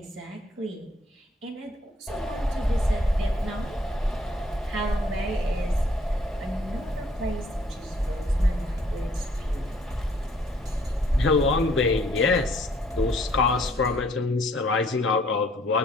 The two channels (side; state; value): both; normal; correlation 0.63